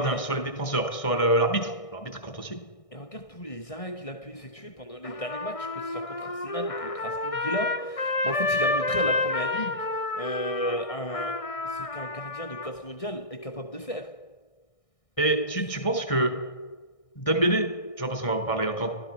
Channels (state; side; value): late; right; 1.6 ms